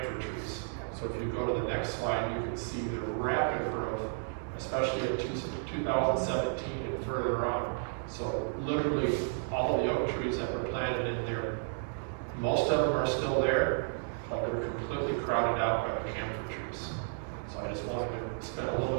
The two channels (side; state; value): left; silent; digital silence